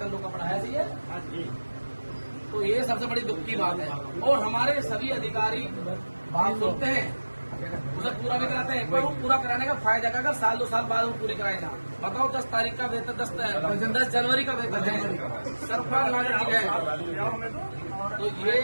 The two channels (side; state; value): both; inverted; correlation -1.00